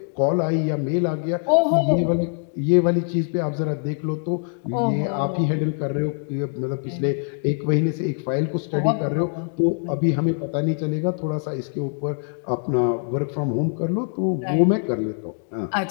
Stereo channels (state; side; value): silent; right; 58 dB below the other